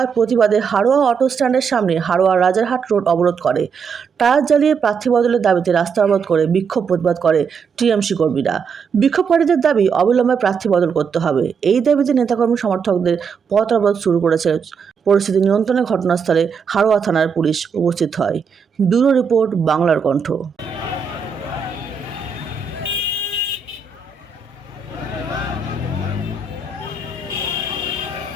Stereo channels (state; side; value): quieter; left; 5.9 dB